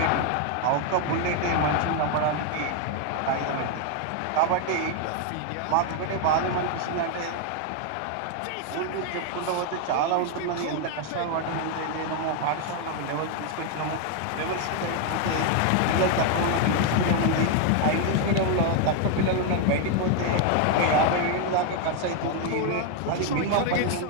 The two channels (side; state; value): both; different; correlation 0.01